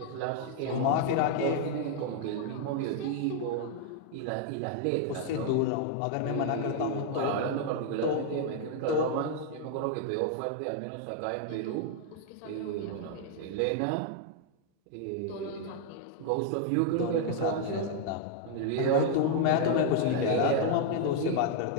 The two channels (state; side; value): different; both; correlation 0.00